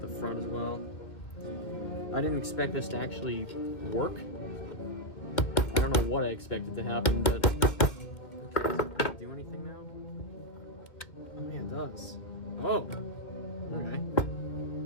the front as well. I didn't expect this to actually work. I don't know what I expected to happen, but... Okay, does it do anything now? Oh yeah, it does. Oh! Okay.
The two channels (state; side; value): late; right; 2.3 ms